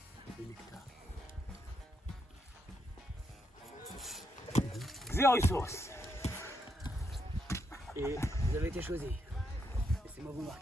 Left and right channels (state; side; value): normal; both; correlation 0.79